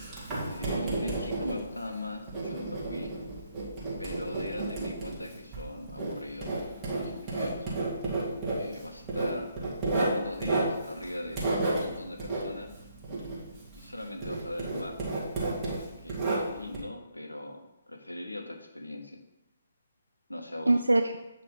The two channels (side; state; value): both; inverted; correlation -0.77